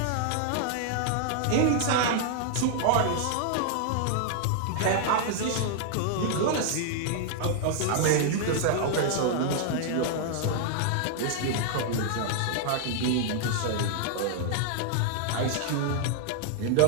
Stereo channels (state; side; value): different; both; correlation -0.01